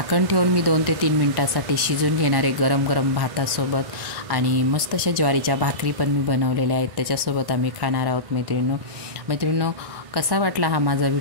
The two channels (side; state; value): left; late; 1.1 ms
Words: ठेवून मी 2 ते 3 मिनटासाठी शिजून घेणार आहे, गरम गरम भातासोबत। आणि मस्त अशा ज्वारीच्या भाकरी पण मी बनवलेल्या आहेत, त्याच्यासोबत आम्ही खाणार आहोत मैत्रिणींनो। कसा वाटला हा माझा